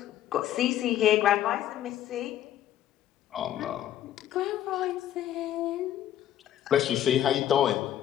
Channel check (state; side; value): quieter; right; 11.7 dB